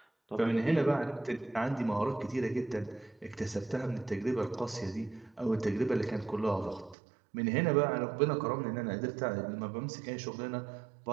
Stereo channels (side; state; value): left; drops out; at 7.0 s